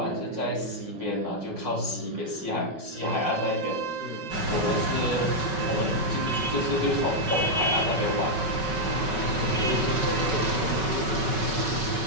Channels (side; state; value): left; late; 5.3 ms